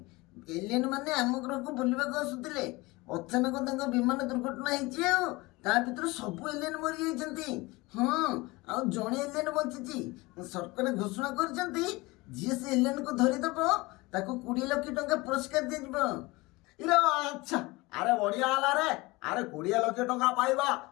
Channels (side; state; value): right; quieter; 22.6 dB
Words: ଏଲିଏନ୍ ମାନେ ଆମ ଗ୍ରହକୁ ବୁଲିବାକୁ ଆସୁଥିଲେ। ଅଚାନକ ତାଙ୍କ ବିମାନ ଦୁର୍ଘଟଣା ହେଇଛି ଆଉ ତା ଭିତରୁ ସବୁ ଏଲିଏନ୍ ମରିଯାଇଛନ୍ତି। ହଁ, ଆଉ ଜଣେ ଏଲିଏନ୍ ବଞ୍ଚିଛି। ସରକାର ଘୋଷଣା କରିଛନ୍ତି ଯିଏ ସେ ଏଲିଏନ୍କୁ ଧରିଦବ ତାକୁ 20 ଲକ୍ଷ ଟଙ୍କା ପୁରସ୍କାର ଦିଆଯିବ। ଇରେ ଆଚ୍ଛା, ଆରେ ବଢିଆ ହେଲା ରେ। ଆରେ 20 ଲକ୍ଷ ଟଙ୍କା ପାଇବା,